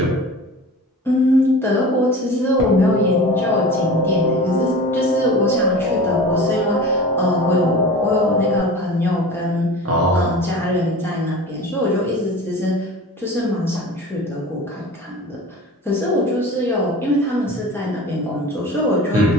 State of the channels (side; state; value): both; normal; correlation 0.36